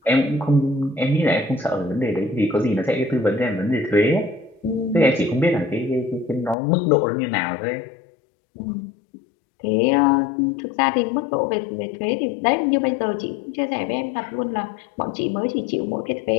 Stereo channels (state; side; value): drops out; right; at 6.6 s